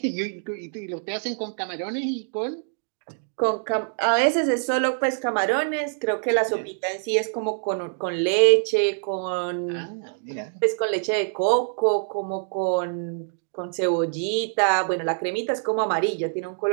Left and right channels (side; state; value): left; silent; digital silence